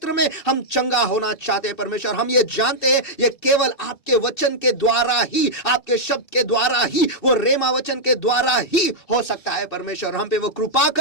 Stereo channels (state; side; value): late; right; 2.6 ms